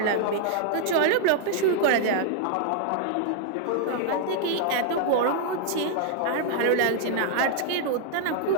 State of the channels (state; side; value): different; both; correlation 0.00